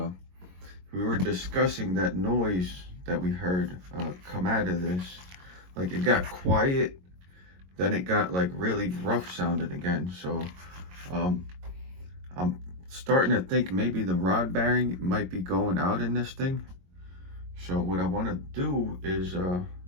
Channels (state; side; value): late; left; 22 ms